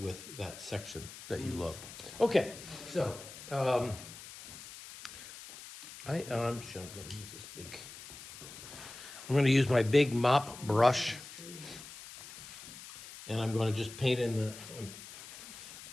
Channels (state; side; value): noise; left; hiss, 14 dB below the sound